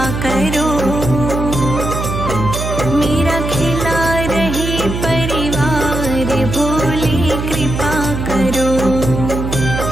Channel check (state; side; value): noise; right; hum, 4 dB below the sound